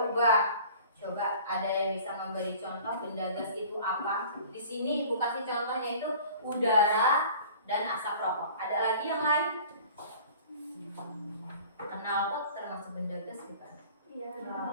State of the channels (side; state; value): both; inverted; correlation -0.46